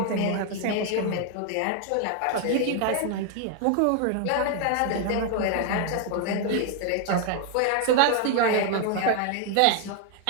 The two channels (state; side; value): different; both; correlation 0.01